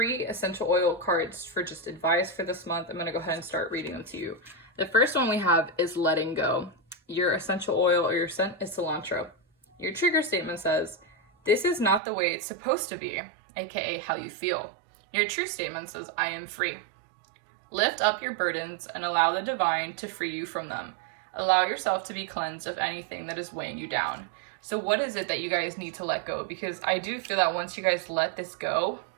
essential oil cards for just advice for this month. I'm going to go ahead and start reading them to you. The first one we have is letting go. Your essential oil or your scent is cilantro. Your trigger statement says, this is not the way it's supposed to be, aka how you feel. Your true statement says, I am free. Lift up your burdens and allow the divine to free you from them. Allow yourself to be cleansed of anything that is weighing you down. So what is it that you guys need to let go? Because I do feel that once you guys let this go,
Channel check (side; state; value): left; drops out; at 12.0 s